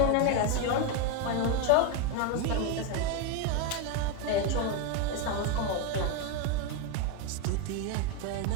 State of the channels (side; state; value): both; different; correlation 0.02